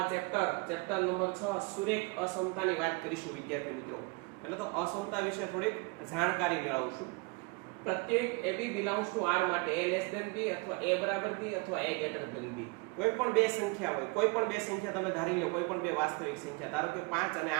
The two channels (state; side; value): quieter; left; 29.0 dB